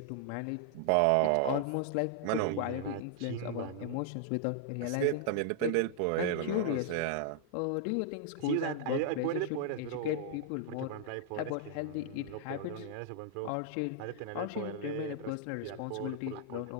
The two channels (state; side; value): different; both; correlation -0.01